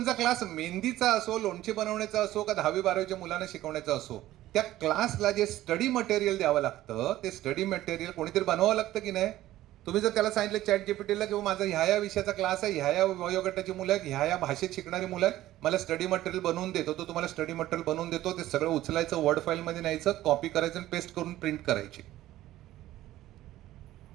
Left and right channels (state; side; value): quieter; left; 14.9 dB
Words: क्लास मेहंदीचा असो, लोणचे बनवण्याचा असो का 10वी-12वीच्या मुलांना शिकवण्याचा असो, त्या क्लासला जे स्टडी मटेरियल द्यावं लागतं ते स्टडी मटेरियल कोणीतरी बनवावं लागतं की नाही. तुम्ही जर त्याला सांगितलं चॅट जीपीटीला किंवा माझा ह्या विषयाचा क्लास आहे, ह्या वयोगटाची मुलं आहेत, ह्या भाषेत शिकणारी मुलं आहेत, मला स्टडी मटेरियल बनवून देतो, तो तुम्हाला स्टडी मटेरियल बनवून देतो. ते सगळं उचलायचं, वर्ड फाईलमध्ये न्यायचं, कॉपी करायचं आणि पेस्ट करून प्रिंट करायची.